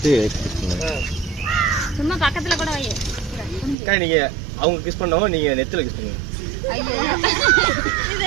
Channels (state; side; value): drops out; left; at 3.8 s